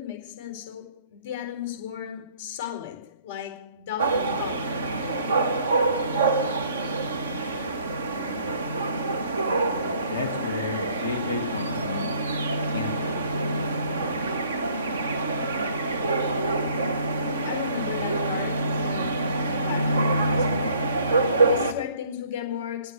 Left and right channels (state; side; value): inverted; both; correlation -0.60